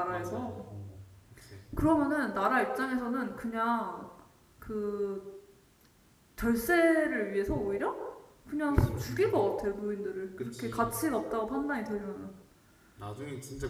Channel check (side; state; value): both; identical; correlation 1.00